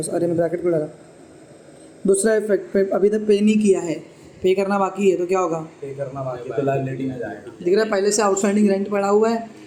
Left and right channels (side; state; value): both; identical; correlation 1.00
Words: अरे मैं ब्रैकेट को लगा। दूसरा इफेक्ट पे अभी तक पे नहीं किया है, पे करना बाकी है, तो क्या होगा? पे करना बाकी तो लायबिलिटी में जाएगा। दिख रहा है पहले से आउटस्टैंडिंग रेंट पड़ा हुआ है,